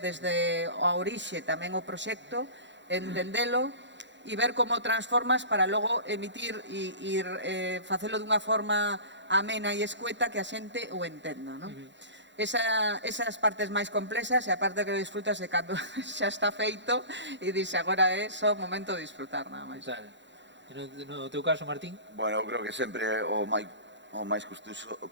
desde a orixe tamén o proxecto, entendelo e ver como transformas para logo emitir e facelo dunha forma amena e escueta que a xente o entenda, non? Esas partes máis complexas e a parte que disfrutas é cando xa está feito e dixe agora é só momento de disfrutar, nada máis. No teu caso, Martín? Bueno, eu creo que sempre o máis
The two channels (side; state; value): left; late; 0.53 ms